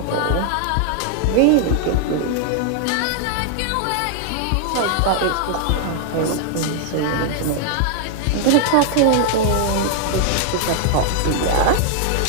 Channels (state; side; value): different; both; correlation 0.00